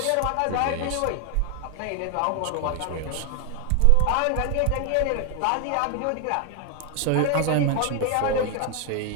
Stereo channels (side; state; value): both; different; correlation 0.01